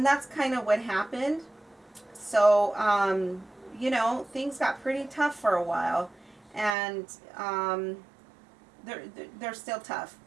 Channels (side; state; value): left; drops out; at 6.8 s